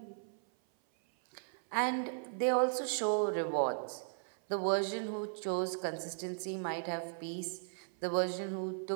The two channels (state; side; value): silent; left; 53 dB below the other